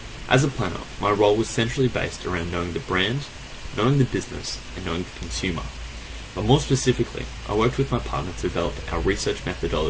As a planner, my role was centrally based around knowing the brand, knowing the business, and knowing the consumer. But more specifically, I worked with my partner to develop our research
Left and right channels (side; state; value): both; identical; correlation 1.00